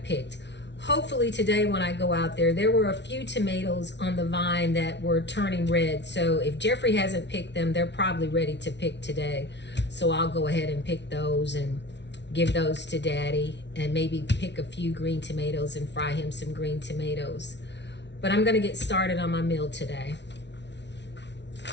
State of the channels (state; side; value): late; right; 0.51 ms